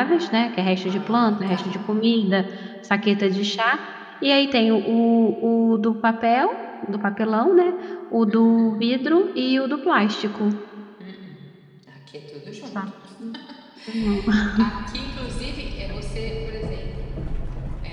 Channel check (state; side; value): identical; both; correlation 1.00